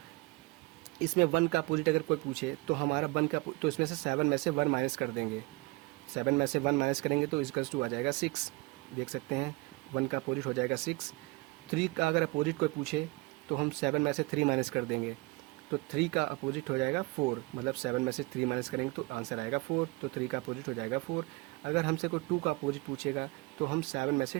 इसमें 1 का अपोजिट अगर कोई पूछे तो हमारा 1 का तो इसमें से 7 में से 1 माइनस कर देंगे। 7 में से 1 माइनस करेंगे तो = आ जाएगा 6। देख सकते हैं 1 का अपोजिट हो जाएगा 6। 3 का अगर अपोजिट कोई पूछे तो हम 7 में से 3 माइनस कर देंगे, तो 3 का अपोजिट हो जाएगा 4। मतलब 7 में से 3 माइनस करेंगे तो आंसर आएगा 4, तो 3 का अपोजिट हो जाएगा 4। अगर हमसे कोई 2 का अपोजिट पूछेगा तो हम 7 में से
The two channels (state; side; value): quieter; left; 24.6 dB